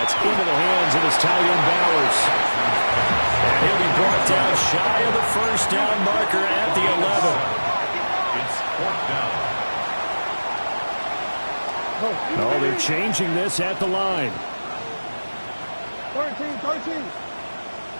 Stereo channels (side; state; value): both; inverted; correlation -1.00